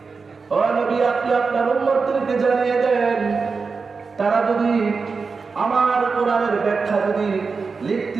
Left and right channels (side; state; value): left; quieter; 4.8 dB